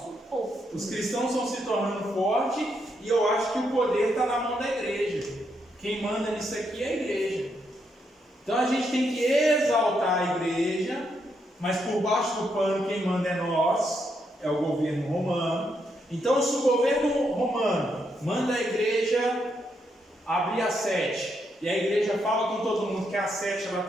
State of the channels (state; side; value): normal; both; correlation 0.79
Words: os cristãos estão se tornando fortes e eu acho que o poder está na mão da igreja. Quem manda nisso aqui é a igreja. Então a gente tem que exaltar a igreja, mas por baixo do pano quem manda é nós, é o governo romano. Então se o governo romano manda a igreja abrir a 7, e a igreja fala com todo mundo que a 7